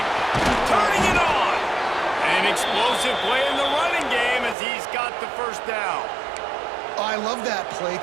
Turning it on. An explosive play in the running game as he's got the first down. I love that play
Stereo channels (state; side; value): drops out; left; at 4.5 s